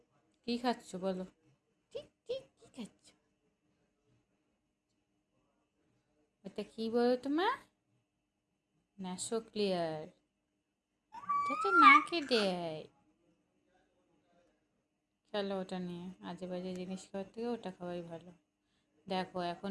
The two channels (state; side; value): identical; both; correlation 1.00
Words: কি খাচ্ছ বলো? ঠিক ঠিক কি খাচ্ছ? এটা কি বলো তোমার? Naso clear. এটা তো নাকে দেয়। চলো ওটা নিয়ে আজে বাজে জিনিস খাওয়ার থেকে ওটা খাওয়াই ভালো। দেখো